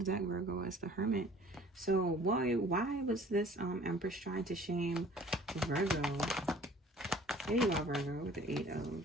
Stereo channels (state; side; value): normal; both; correlation 0.51